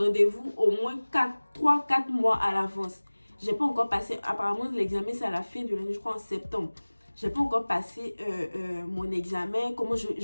au moins 3-4 mois à l'avance. J'ai pas encore passé, apparemment l'examen c'est à la fin de l'année, je crois en septembre. J'ai pas encore passé mon examen, comment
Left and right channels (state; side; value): inverted; both; correlation -1.00